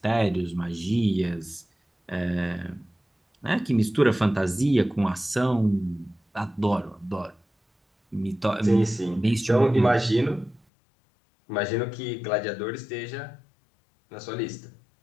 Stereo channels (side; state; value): right; drops out; at 10.6 s